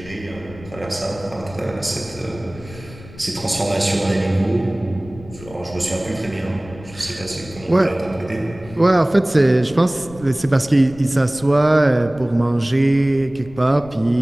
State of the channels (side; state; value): left; noise; rumble, 18 dB below the sound